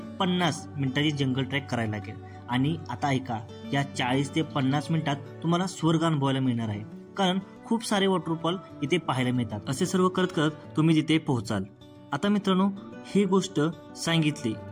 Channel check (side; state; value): both; identical; correlation 1.00